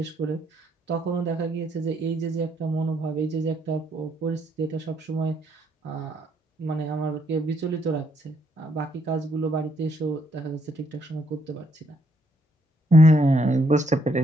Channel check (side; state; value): both; normal; correlation 0.73